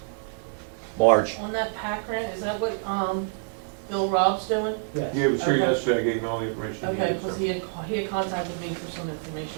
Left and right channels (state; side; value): silent; left; digital silence